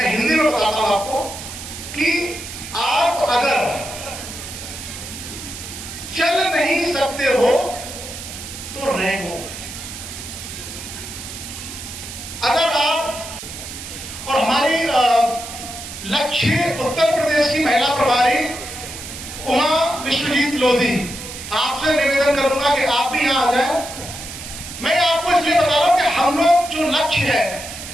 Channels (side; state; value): right; noise; hiss, 11 dB below the sound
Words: हिंदी में बताता हूं आपको, कि आप अगर चल नहीं सकते हो तो रहो। अगर आप, और हमारी लक्ष्य उत्तर प्रदेश की महिला प्रभारी उमा विश्वजीत लोधी, आपसे निवेदन करूंगा कि आप भी यहां आ जाएं। मैं आपको इसलिए बता रहा हूं कि हम लोग जो लक्ष्य है,